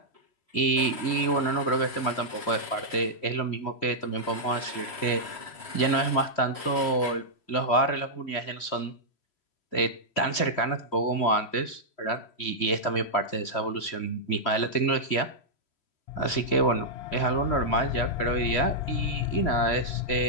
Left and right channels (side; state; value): right; late; 3.1 ms